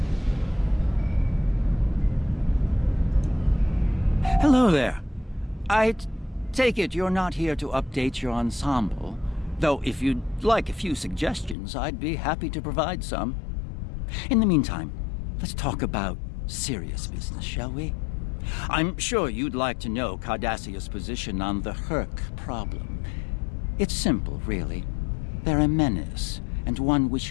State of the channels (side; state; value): right; drops out; at 11.6 s